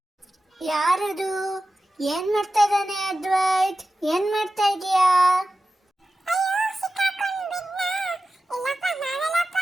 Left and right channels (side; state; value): both; normal; correlation 0.93